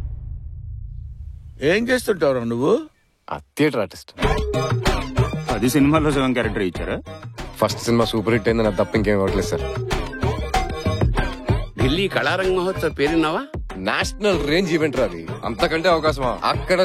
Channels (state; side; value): identical; both; correlation 1.00